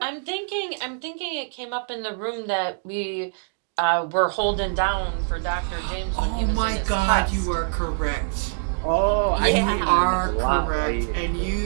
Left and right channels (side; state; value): left; silent; digital silence